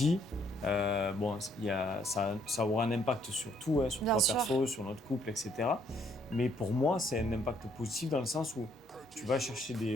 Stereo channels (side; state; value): both; normal; correlation 0.67